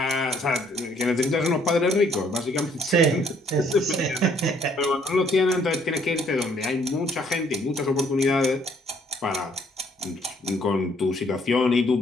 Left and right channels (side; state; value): both; normal; correlation 0.64